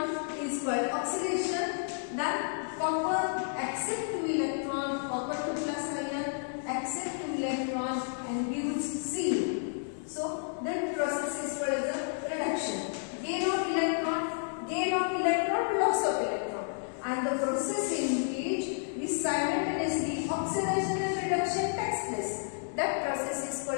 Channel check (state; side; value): silent; right; digital silence